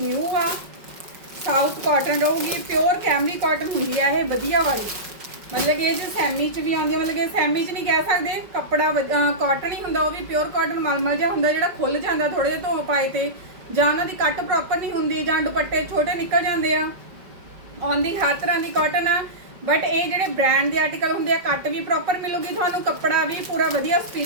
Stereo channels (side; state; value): left; late; 5.3 ms